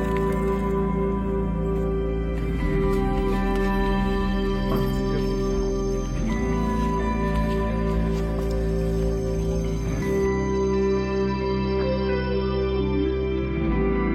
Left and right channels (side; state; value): both; identical; correlation 1.00